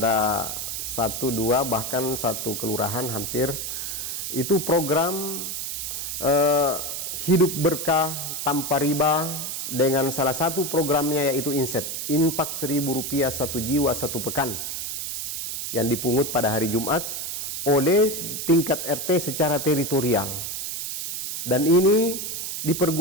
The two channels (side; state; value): right; noise; hiss, 4 dB below the sound